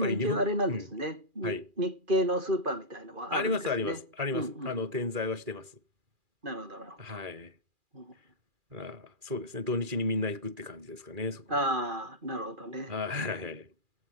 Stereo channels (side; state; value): left; late; 2.4 ms